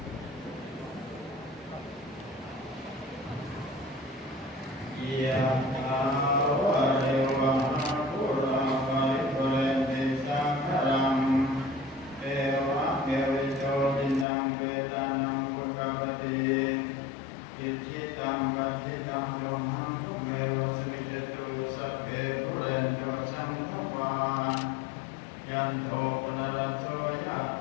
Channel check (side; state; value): right; drops out; at 14.2 s